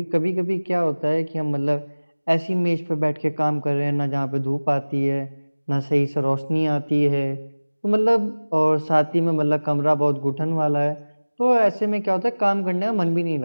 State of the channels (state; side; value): inverted; both; correlation -1.00